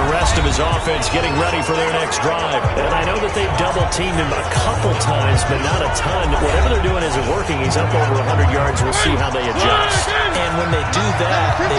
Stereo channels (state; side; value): identical; both; correlation 1.00